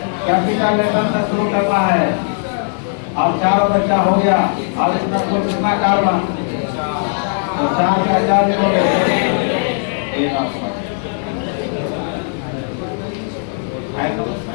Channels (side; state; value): right; silent; digital silence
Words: कैपिटल लेटर से शुरू करना है। अब चारों बच्चा हो गया। अब इसमें कुल कितना कार्बन? तो 4 का 4 लिखोगे।